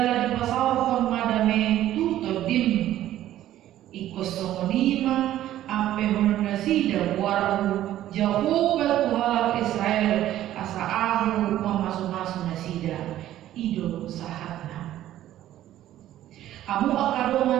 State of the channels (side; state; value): left; quieter; 13.1 dB